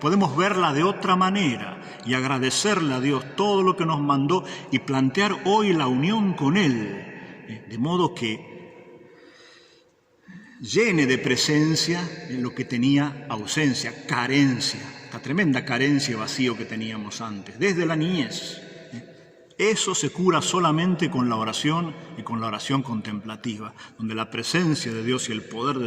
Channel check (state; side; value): identical; both; correlation 1.00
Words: verla de otra manera y agradecerle a Dios todo lo que nos mandó y plantear hoy la unión con Él, de modo que llene de presencia en lo que tenía ausencia, carencia, esta tremenda carencia y vacío que teníamos antes, desde la niñez. Eso se cura solamente con la oración y con la oración contemplativa, donde la presencia de Dios y el poder